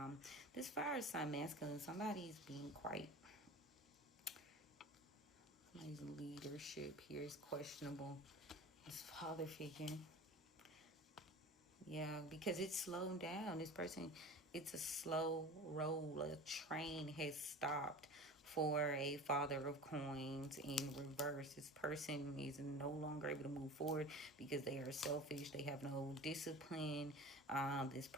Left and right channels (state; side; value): normal; both; correlation 0.36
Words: This fire sign masculine, somebody's being quite, somebody's leadership here is questionable. This father figure. Yeah, because it's slowed down. This person, it's a slow roll. A train has stopped for a Father of Coins in reverse. This person is no longer able to move forward because they are selfish. They have no discipline. This